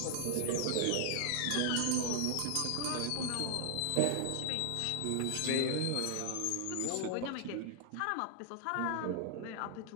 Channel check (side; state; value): both; different; correlation 0.00